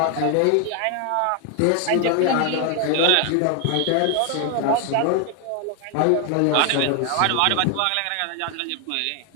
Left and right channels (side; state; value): both; different; correlation 0.00